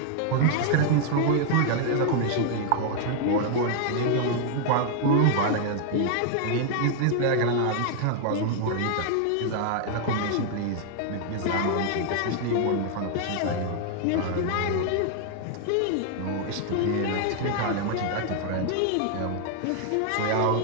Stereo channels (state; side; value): different; both; correlation 0.00